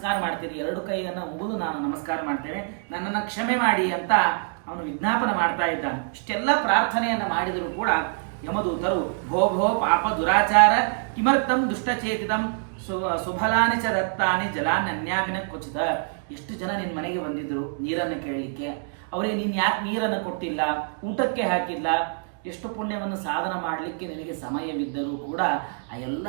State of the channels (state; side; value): silent; left; 61 dB below the other